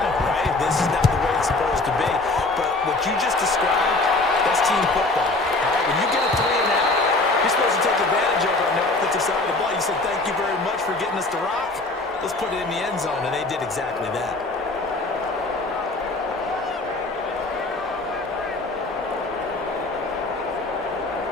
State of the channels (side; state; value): right; quieter; 3.1 dB